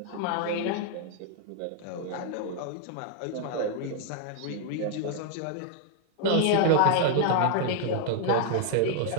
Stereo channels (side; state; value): both; different; correlation 0.00